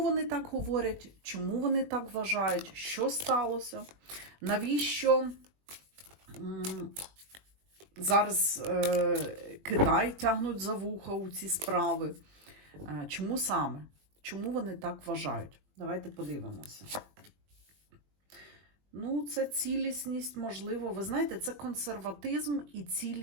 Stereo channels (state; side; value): late; left; 21 ms